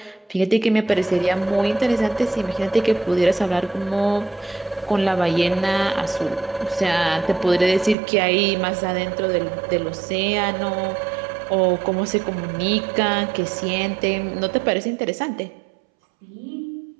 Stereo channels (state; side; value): drops out; left; at 8.0 s